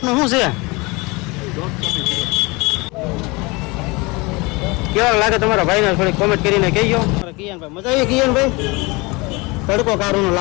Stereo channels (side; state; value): right; quieter; 25.5 dB